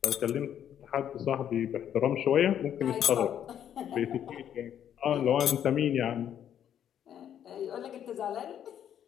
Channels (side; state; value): right; quieter; 9.8 dB